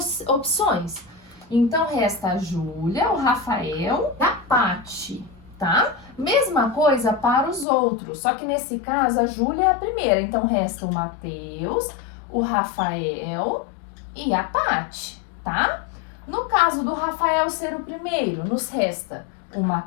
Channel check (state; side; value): drops out; right; at 7.7 s